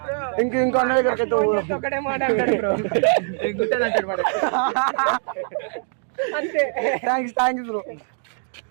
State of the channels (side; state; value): left; silent; digital silence